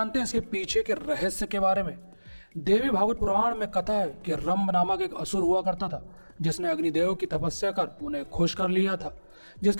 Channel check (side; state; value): both; inverted; correlation -1.00